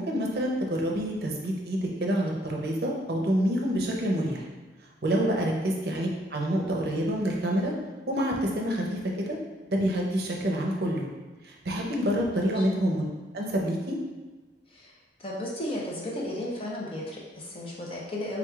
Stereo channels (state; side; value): normal; both; correlation 0.67